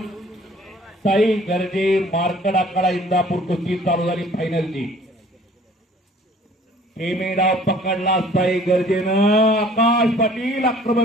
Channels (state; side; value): normal; both; correlation 0.54